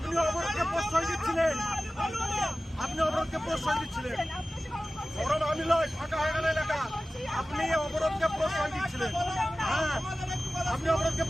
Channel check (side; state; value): both; normal; correlation 0.96